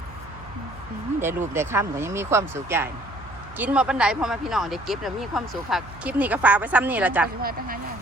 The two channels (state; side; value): noise; right; hum, 19 dB below the sound